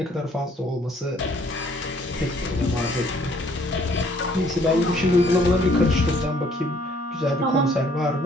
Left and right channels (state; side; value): normal; both; correlation 0.62